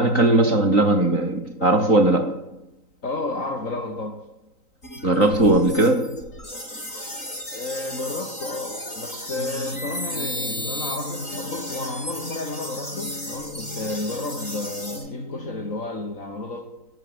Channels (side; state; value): right; late; 3.9 ms